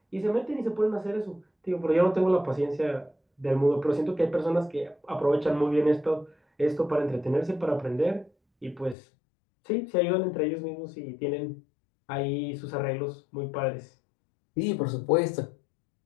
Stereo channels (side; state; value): right; drops out; at 9.0 s